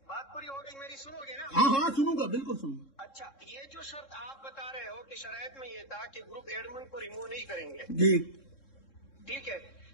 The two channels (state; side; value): late; right; 3.7 ms